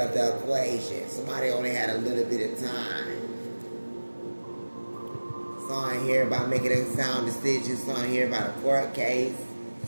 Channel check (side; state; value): both; inverted; correlation -1.00